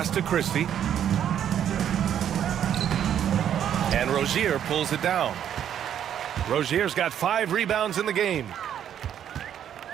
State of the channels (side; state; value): left; quieter; 9.7 dB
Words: to Christie. And Rozier pulls it down. Rozier's got 5 rebounds in the game.